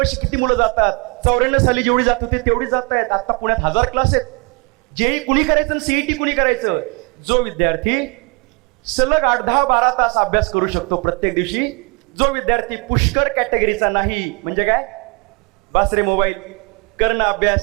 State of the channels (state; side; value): quieter; left; 30.9 dB